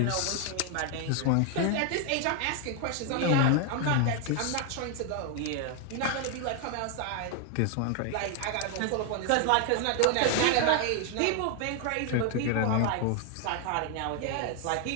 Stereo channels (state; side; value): different; both; correlation 0.00